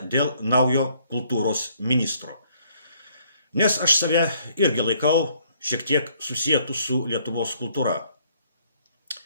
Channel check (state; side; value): inverted; both; correlation -0.65